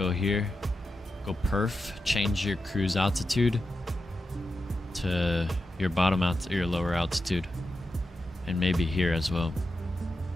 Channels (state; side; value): normal; both; correlation 0.89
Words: here, go perf, change your cruise altitude to your bottom your lower altitude, and maybe here as well.